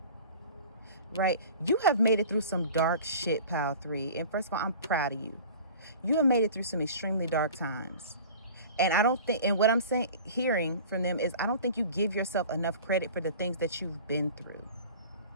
right? You have made it through some dark shit, Pile 3. And first of all, I'm proud of you. You have made it through some extremely dark times. And I don't think, and what I'm saying, hearing from them is, I don't think you give yourself enough credit for the things that you've been through,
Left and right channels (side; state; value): both; inverted; correlation -0.42